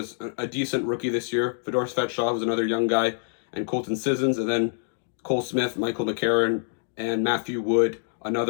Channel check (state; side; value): silent; right; digital silence